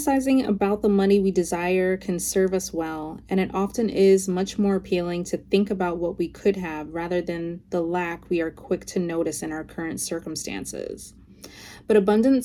about the money we desire can serve us well, and it often is much more appealing to think about what we could have rather than the lack we are quick to notice in our current circumstances. But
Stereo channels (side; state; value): both; identical; correlation 1.00